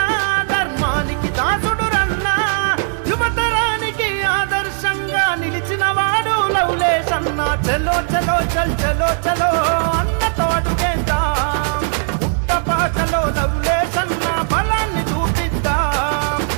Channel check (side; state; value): left; silent; digital silence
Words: ధర్మానికి దాసుడు రన్నా యువతరానికి ఆదర్శంగా నిలిచిన వాడు లవలేశన్న చలో చలో చల్ చలో చలో అన్నతో అడుగేద్దాం పుట్టపాటలో లవలేశన్న బలాన్ని చూపిద్దాం